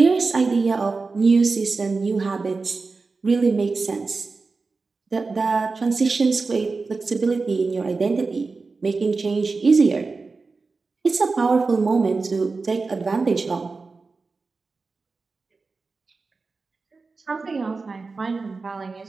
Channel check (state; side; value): quieter; left; 4.1 dB